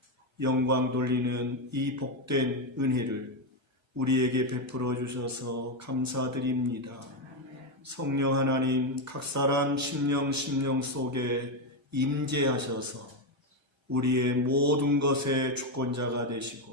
영광 돌리는 이 복된 은혜를 우리에게 베풀어 주셔서 감사드립니다. 성령 하나님 각 사람 심령 속에 임재하셔서 우리의 모든 것의 주권자가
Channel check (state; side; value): late; left; 1.2 ms